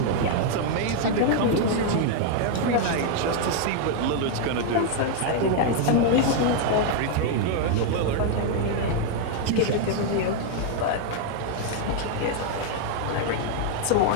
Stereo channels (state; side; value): different; both; correlation 0.00